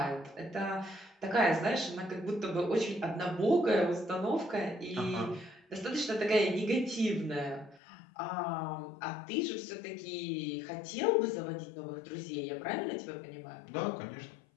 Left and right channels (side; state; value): right; drops out; at 7.8 s